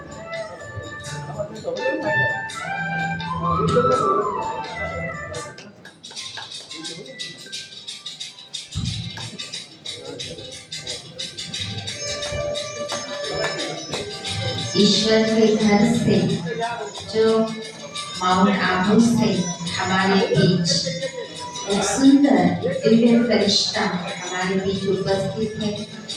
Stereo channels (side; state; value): both; identical; correlation 1.00